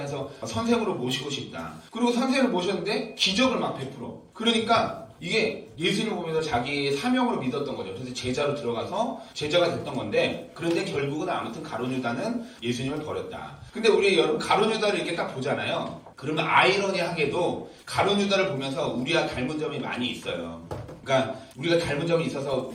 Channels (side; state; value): both; identical; correlation 1.00